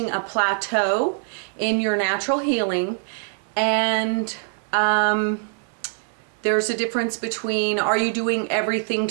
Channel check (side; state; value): left; silent; 63 dB below the other